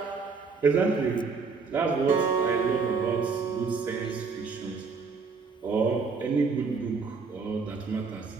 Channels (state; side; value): quieter; left; 4.9 dB